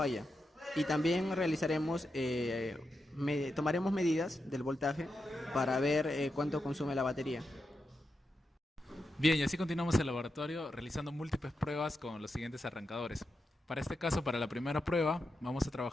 Y también tomaremos medidas del voltaje para ver cuánto consume la batería. Bien, y así continuamos el laboratorio realizando múltiples pruebas con los siguientes arrancadores. Para este caso, para la primera prueba, vamos a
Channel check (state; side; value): normal; both; correlation 0.87